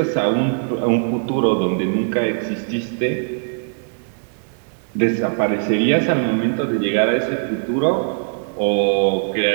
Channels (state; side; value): silent; left; digital silence